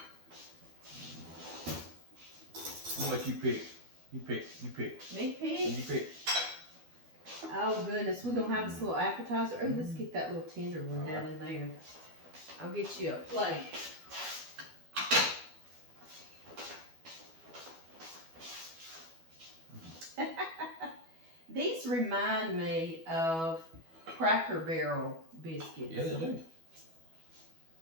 to let you pick. You pick. Me pick? You pick. Oh goodness, we're going to have this little appetizer. Oh, let's get that little tender one down in there. I'll get you a plate. These remind me of Cracker Barrel biscuits. Yeah, they do.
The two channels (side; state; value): left; late; 12 ms